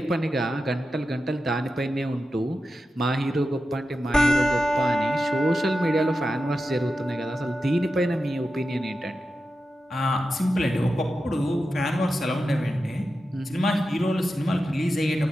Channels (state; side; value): normal; both; correlation 0.91